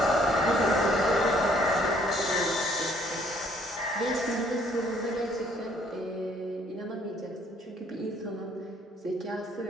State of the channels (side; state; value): both; normal; correlation 0.63